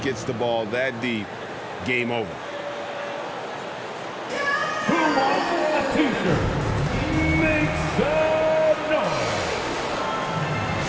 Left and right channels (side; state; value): both; identical; correlation 1.00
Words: the ball that deep, game over. Who wants a t-shirt? Make some noise.